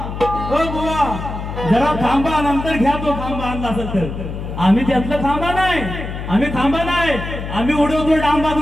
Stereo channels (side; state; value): left; noise; hum, 7 dB below the sound